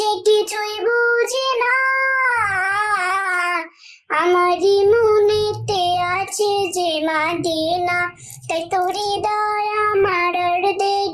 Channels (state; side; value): identical; both; correlation 1.00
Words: কিছুই বুঝে না। আমারই মনেতে আছে যে মাদিনা, তাই তোর হৃদয় আমার আর